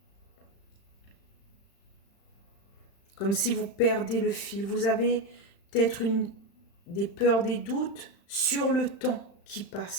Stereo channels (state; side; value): late; right; 35 ms